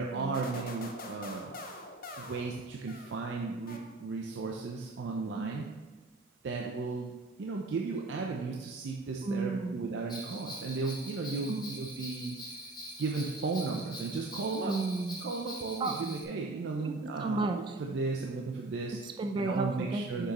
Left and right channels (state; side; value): quieter; left; 3.2 dB